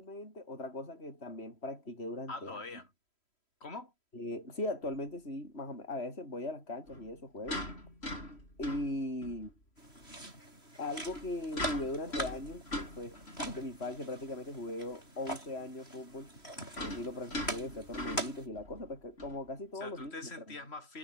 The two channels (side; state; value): right; late; 3.1 ms